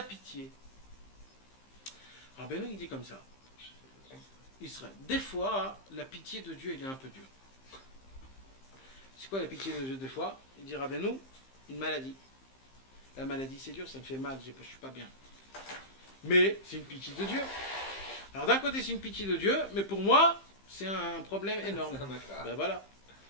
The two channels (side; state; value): right; late; 15 ms